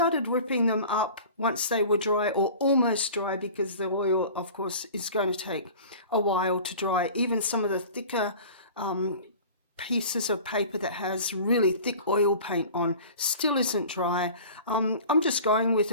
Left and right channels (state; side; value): inverted; both; correlation -0.41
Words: ripping them up once they were dry, or almost dry, because the oil, of course, is going to take a while to dry. Even some of the thicker pieces of paper that has really thick oil paint on still isn't dry. I'm just going with